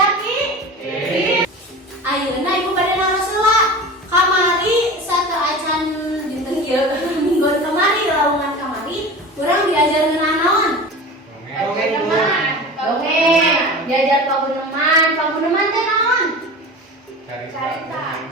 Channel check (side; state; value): both; normal; correlation 0.33